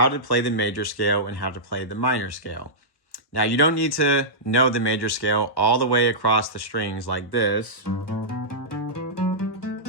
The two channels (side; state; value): right; late; 1.1 ms